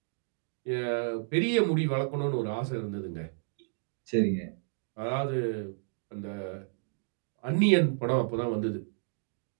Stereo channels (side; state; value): left; silent; digital silence